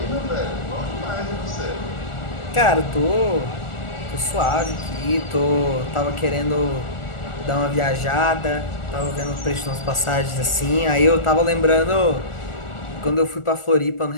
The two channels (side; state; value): right; late; 1.4 ms